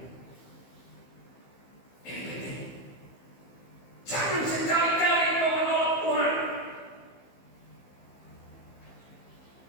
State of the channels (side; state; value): right; late; 15 ms